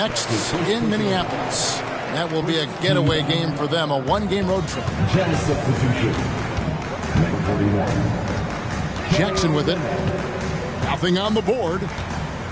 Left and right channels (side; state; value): both; identical; correlation 1.00